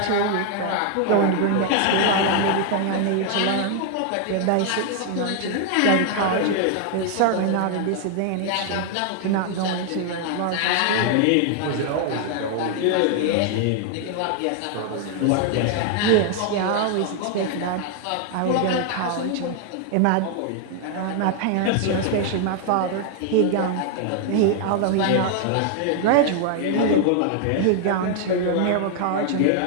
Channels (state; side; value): different; both; correlation 0.00